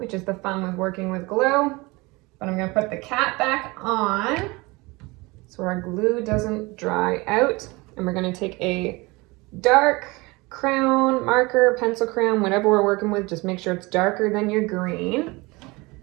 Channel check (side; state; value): left; quieter; 24.1 dB